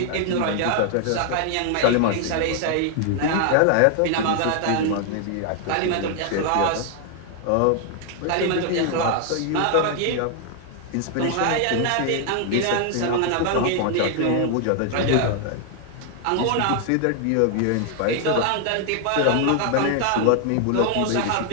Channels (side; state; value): both; different; correlation 0.00